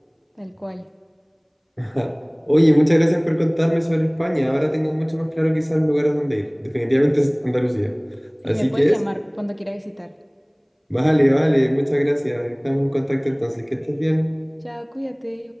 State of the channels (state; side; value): identical; both; correlation 1.00